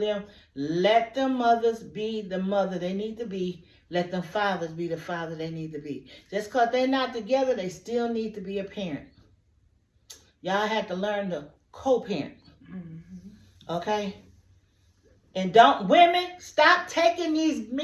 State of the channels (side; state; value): both; identical; correlation 1.00